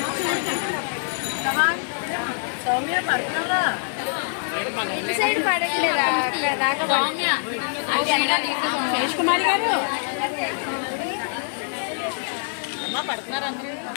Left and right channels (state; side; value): silent; right; digital silence